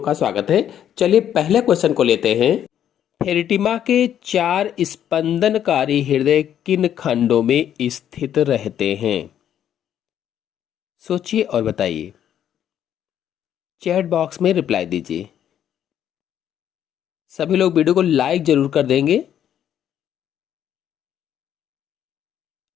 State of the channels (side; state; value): right; quieter; 10.1 dB